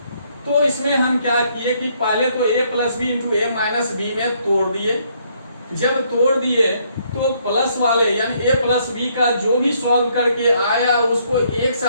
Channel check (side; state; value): both; inverted; correlation -0.69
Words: तो इसमें हम क्या किए कि पहले तो a + b × a - b में तोड़ दिए। जब तोड़ दिए तो प्लस वाले यानी a + b का जो भी सॉल्व करके आया उसको एक